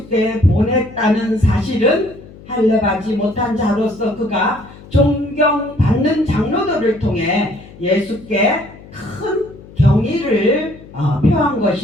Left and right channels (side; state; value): left; noise; hum, 20 dB below the sound